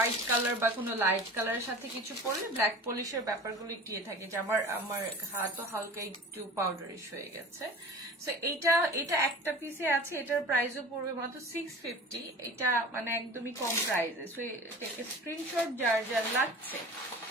কালার বা কোনো লাইট কালারের সাথে কিছু পরলে ব্ল্যাক পলিশের ব্যাপারগুলো একটু থাকে, যে আমার হাতও হালকা একটু পাউডারিশ হয়ে গেছে। সো এটা একটা পিসে আছে, এটার প্রাইসও পড়বে মাত্র 650। এটা মানে একদমই কম প্রাইসে। সো এটাকে স্ক্রিনশট যার যার লাগছে,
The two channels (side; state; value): both; normal; correlation 0.38